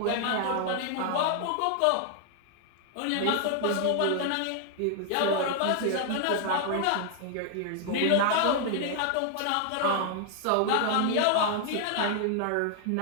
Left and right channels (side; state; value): both; different; correlation 0.00